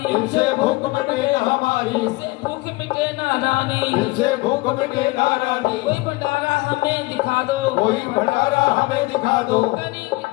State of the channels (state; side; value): quieter; right; 22.7 dB